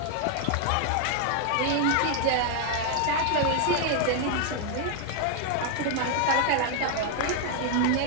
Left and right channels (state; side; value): different; both; correlation 0.00